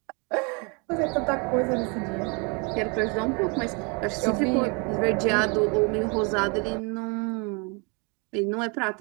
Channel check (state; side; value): quieter; left; 32.3 dB